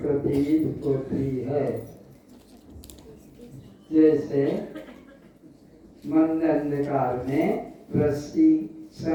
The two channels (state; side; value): identical; both; correlation 1.00